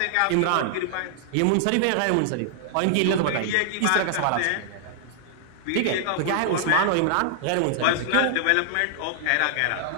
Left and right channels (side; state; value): both; different; correlation -0.01